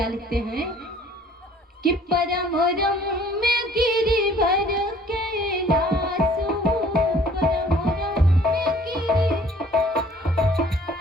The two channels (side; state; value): both; normal; correlation 0.55